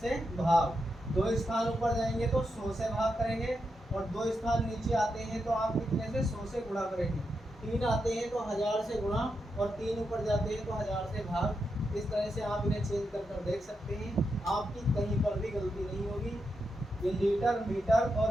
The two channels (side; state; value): both; normal; correlation 0.85